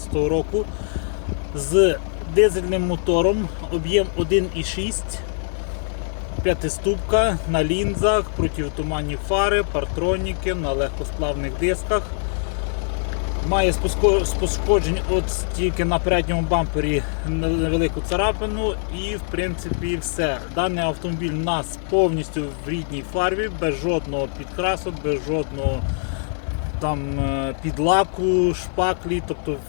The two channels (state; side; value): silent; right; digital silence